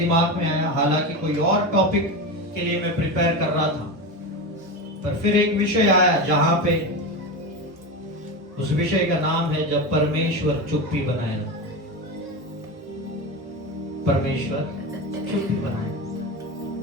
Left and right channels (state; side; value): normal; both; correlation 0.21